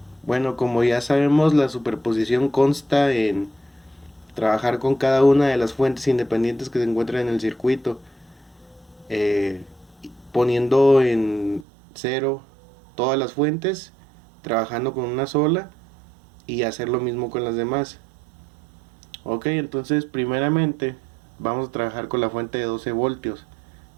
Bueno, como ya sabemos, la superposición consta en trabajar con cada una de las fuentes independientes que se encuentran en el circuito, eh, poniendo en cero todas las fuentes, trabajando con una sola y hacer lo mismo con las demás. Ok, entonces primeramente vamos a trabajar con la fuente de 12 voltios,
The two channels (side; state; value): left; drops out; at 11.7 s